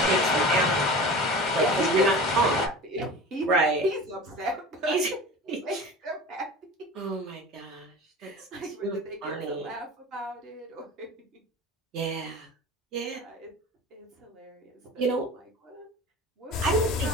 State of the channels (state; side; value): normal; both; correlation 0.35